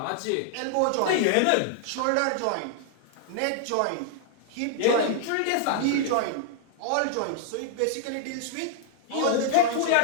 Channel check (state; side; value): different; both; correlation -0.01